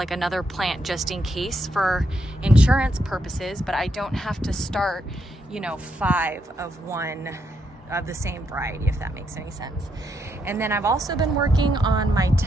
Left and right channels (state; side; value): normal; both; correlation 0.78